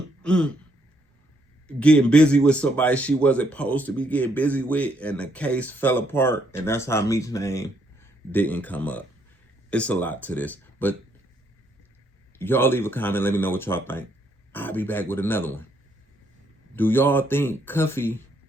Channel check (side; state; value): both; normal; correlation 0.72